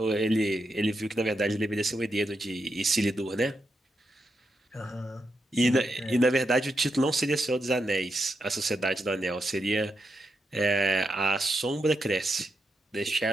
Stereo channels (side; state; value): both; normal; correlation 0.85